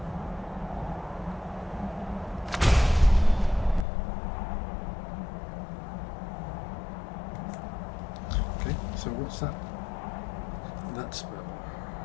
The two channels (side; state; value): right; drops out; at 3.9 s